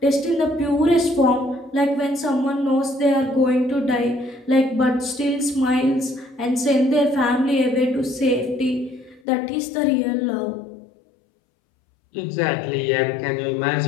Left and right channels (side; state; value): right; drops out; at 9.2 s